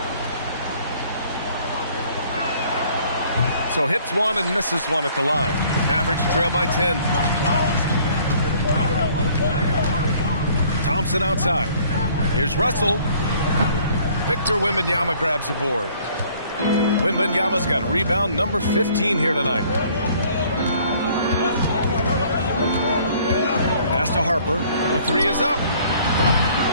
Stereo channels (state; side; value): inverted; both; correlation -0.58